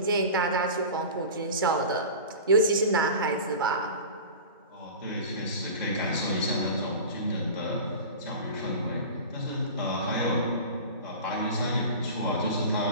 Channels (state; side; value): inverted; both; correlation -0.34